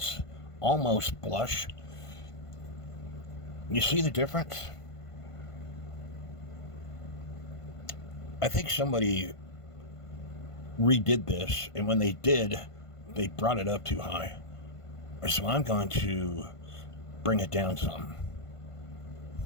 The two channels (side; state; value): right; late; 1.5 ms